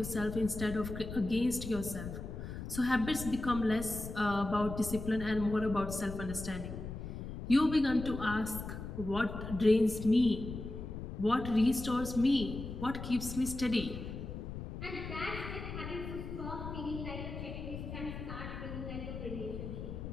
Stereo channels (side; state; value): left; noise; rumble, 8 dB below the sound